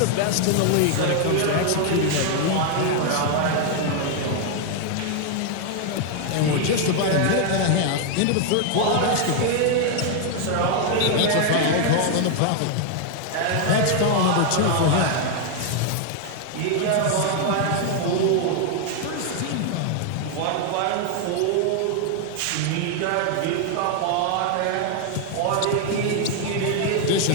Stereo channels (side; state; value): both; different; correlation 0.00